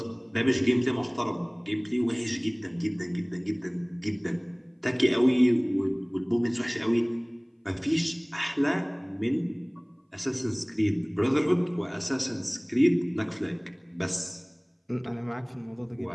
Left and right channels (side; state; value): both; identical; correlation 1.00